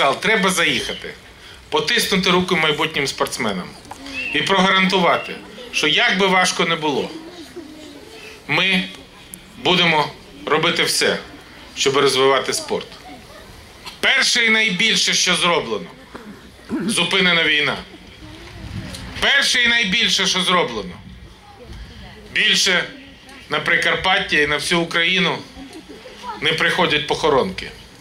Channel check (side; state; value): both; identical; correlation 1.00